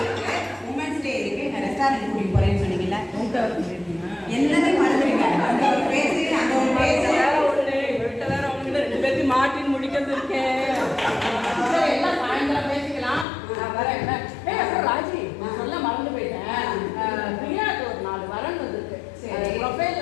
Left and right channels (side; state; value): right; drops out; at 13.2 s